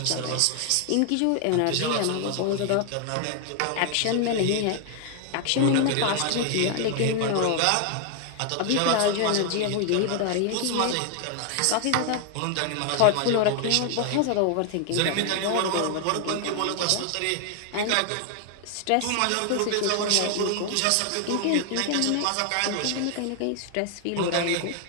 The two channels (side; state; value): both; different; correlation 0.00